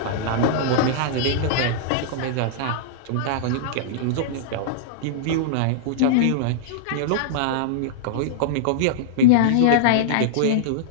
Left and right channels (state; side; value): different; both; correlation -0.02